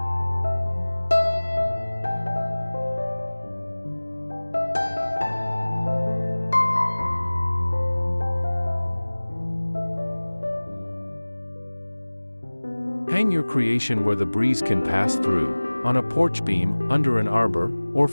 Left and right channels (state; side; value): inverted; both; correlation -1.00